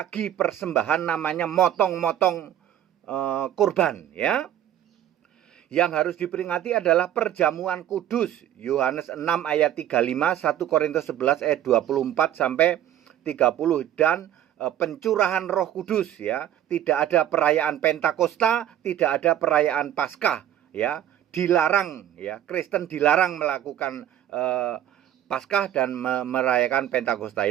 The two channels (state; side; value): quieter; left; 11.4 dB